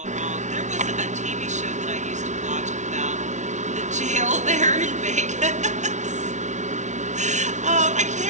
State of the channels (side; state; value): left; late; 0.35 ms